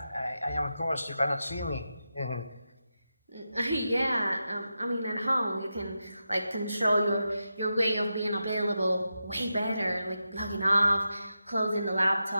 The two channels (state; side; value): inverted; both; correlation -0.89